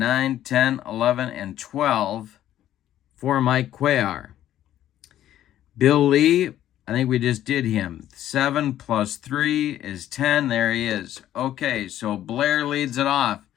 10, 11, and 12 for Mike Cuellar. Bill Lee, I think we just did him. 7 plus 3 is 10. There he is. Okay, so Blair leads it off.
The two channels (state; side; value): quieter; right; 12.2 dB